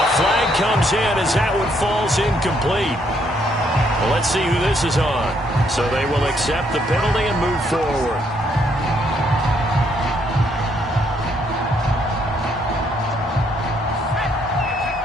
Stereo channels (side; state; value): both; normal; correlation 0.71